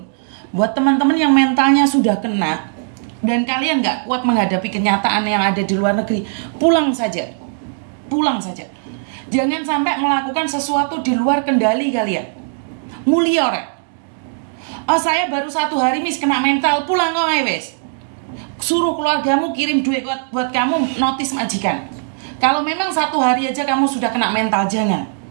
buat teman-teman yang mentalnya sudah kena, dan kalian nggak kuat menghadapi kenyataan yang ada di luar negeri, pulang saja. Jangan sampai melakukan sesuatu di luar kendali kalian. Mulia rek. Oh, saya baru 1 hari mis kena mental, pulang kok wes. Suruh keluargamu kirim duit buat kamu notis majikan. Kalau memang 1 hari aja kamu sudah kena mental, jangan.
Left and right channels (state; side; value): silent; left; digital silence